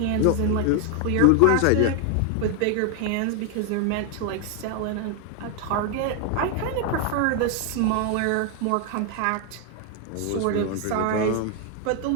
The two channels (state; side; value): different; both; correlation 0.00